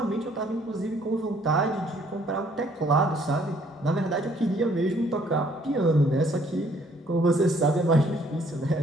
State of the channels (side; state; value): both; normal; correlation 0.63